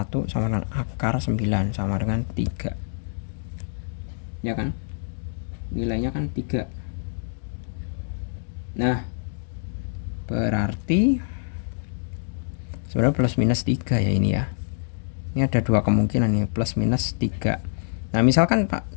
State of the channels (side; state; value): right; silent; digital silence